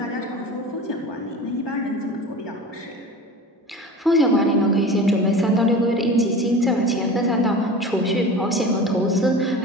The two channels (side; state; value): both; normal; correlation 0.35